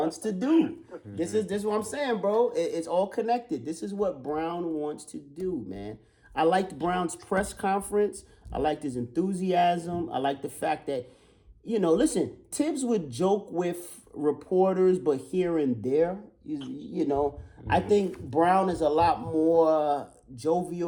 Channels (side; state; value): both; identical; correlation 1.00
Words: to do. This is what I'm saying, bro. It's all connected. This is what Brown wants to do, man. I liked Brown's press conference. I liked his enthusiasm. I liked the fact that, listen, Tibbs would joke with reporters, but here and there, I think Brown is a lot more